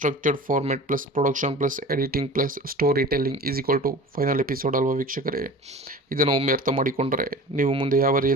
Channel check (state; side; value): normal; both; correlation 0.39